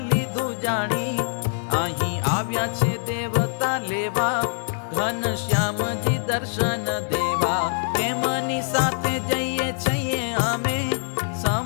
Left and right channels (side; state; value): right; silent; 61 dB below the other